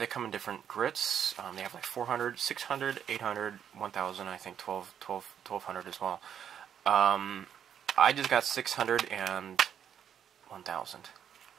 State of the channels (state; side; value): quieter; left; 8.8 dB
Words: come in different grits. They have like 400, 600, 800, 1000, I think 1200 as well. I just got 600 and 1000.